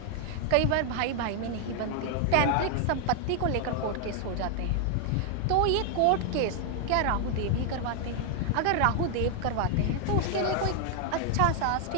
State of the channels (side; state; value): both; different; correlation 0.00